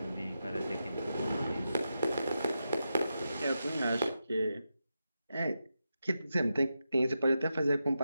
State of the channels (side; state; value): both; inverted; correlation -0.88